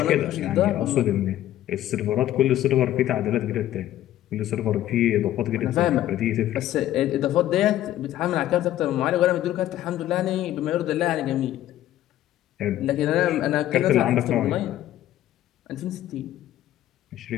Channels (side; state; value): right; quieter; 13.2 dB